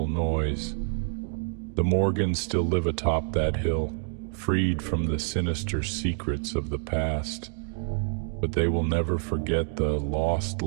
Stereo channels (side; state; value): left; silent; 60 dB below the other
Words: noise. The Morgans still live atop that hill, freed from the sinister secrets of the past, but they will never forget the lost